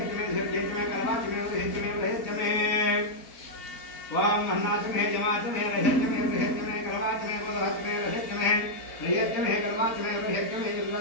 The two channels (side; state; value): right; late; 4.2 ms